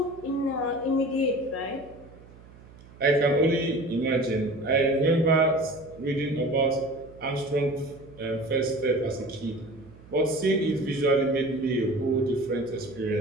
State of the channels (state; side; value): noise; right; hum, 22 dB below the sound